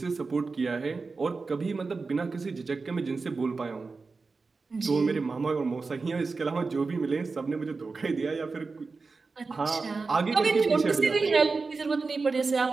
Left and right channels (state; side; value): quieter; left; 4.2 dB